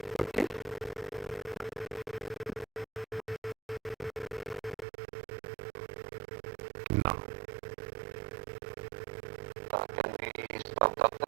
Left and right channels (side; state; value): left; drops out; at 4.9 s